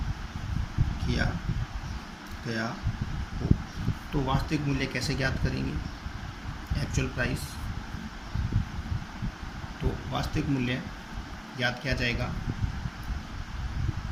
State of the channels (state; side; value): identical; both; correlation 1.00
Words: किया गया हो, तो वास्तविक मूल्य कैसे ज्ञात करेंगे, एक्चुअल प्राइस। तो वास्तविक मूल्य ज्ञात किया जाएगा,